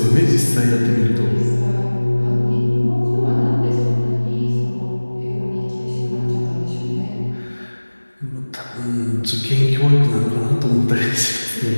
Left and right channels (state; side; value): inverted; both; correlation -1.00